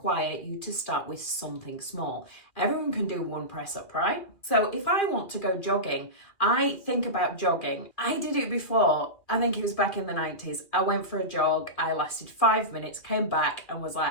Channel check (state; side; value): late; right; 2.3 ms